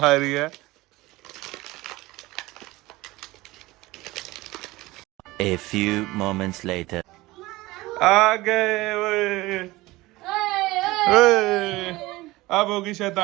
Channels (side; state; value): left; quieter; 19.8 dB